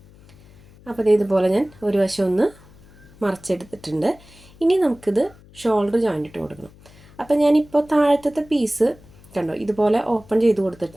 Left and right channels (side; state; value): left; noise; hum, 24 dB below the sound